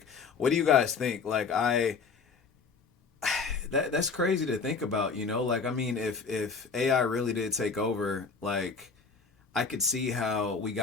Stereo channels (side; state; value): right; quieter; 5.0 dB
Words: what do you guys think? Like, that's crazy to think about, like, I mean, if AI really did take over, like, I could see how we